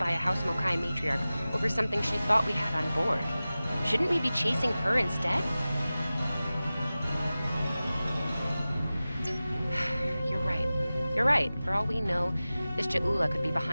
a House Mokai matriarch over something she thought we had on board. Shouldn't we be chasing her instead? You're right. You're right. For all we know, this Ja'ula could be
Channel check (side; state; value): both; inverted; correlation -0.96